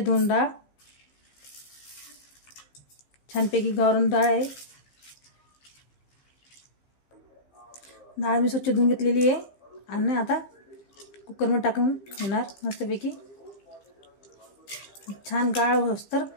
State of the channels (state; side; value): late; right; 15 ms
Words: डाळ, छानपैकी गावरान डाळ आहे। डाळ मी स्वच्छ धुवून घेतलेली आहे आणि आता कुकरमध्ये टाकून घेणार। मस्तपैकी छान गाळ होस्तर